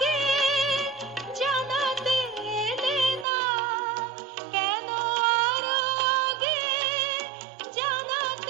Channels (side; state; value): left; drops out; at 3.2 s